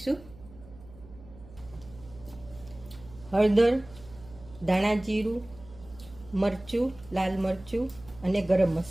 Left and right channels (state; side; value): noise; right; hum, 20 dB below the sound